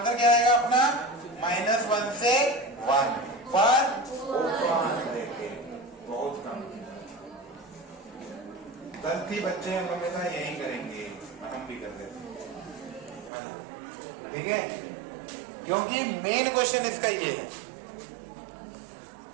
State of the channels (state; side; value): drops out; left; at 13.3 s